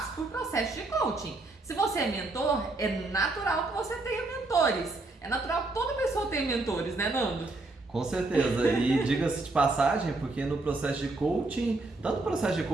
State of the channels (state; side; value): quieter; left; 3.1 dB